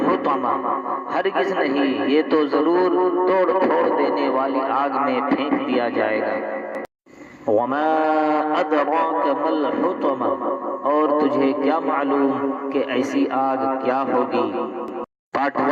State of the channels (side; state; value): both; identical; correlation 1.00